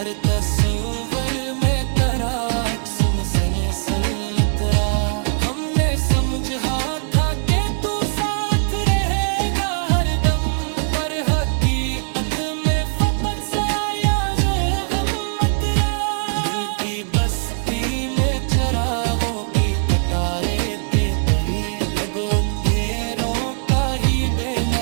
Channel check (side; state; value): left; silent; 65 dB below the other